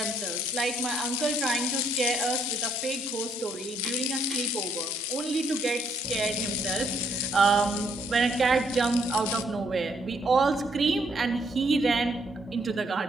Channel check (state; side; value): normal; both; correlation 0.70